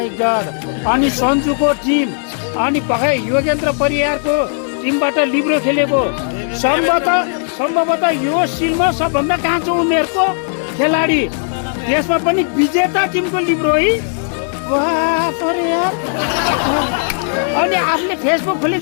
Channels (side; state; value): right; silent; digital silence